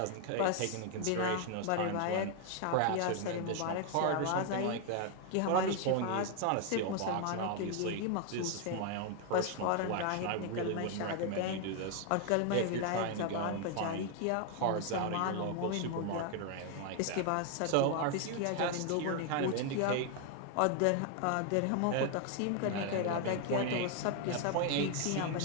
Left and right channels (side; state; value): both; different; correlation 0.00